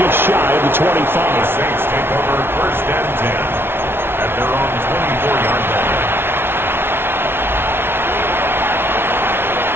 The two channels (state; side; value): late; left; 0.11 ms